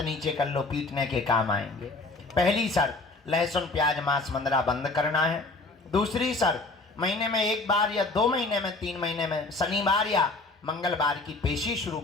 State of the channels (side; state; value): right; quieter; 3.3 dB